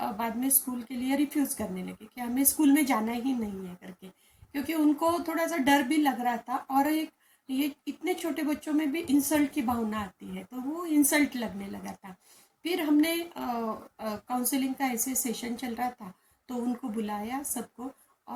बाद में स्कूल के लिए रिफ्यूज़ करने लगे कि हमें स्कूल में जाना ही नहीं है करके, क्योंकि उनको थोड़ा सा डर भी लग रहा था। और एक ये इतने छोटे बच्चों में भी इंसल्ट की भावना आती है, तो वो इंसल्ट लगने लगा था। फिर हमने काउंसलिंग का ऐसे सेशन चल रहा था तो उनको बुलाया सबको।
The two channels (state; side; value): identical; both; correlation 1.00